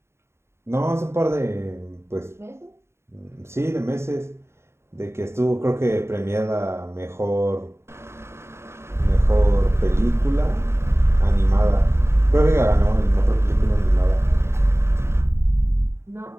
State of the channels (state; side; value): late; left; 0.13 ms